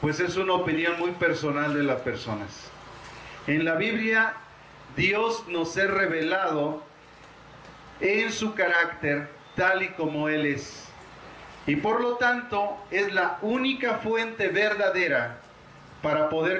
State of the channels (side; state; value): both; identical; correlation 1.00